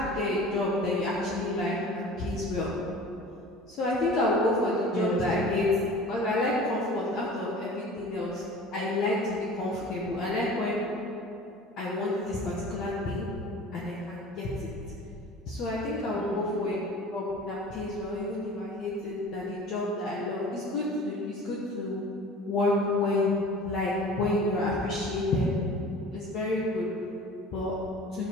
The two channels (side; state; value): both; normal; correlation 0.41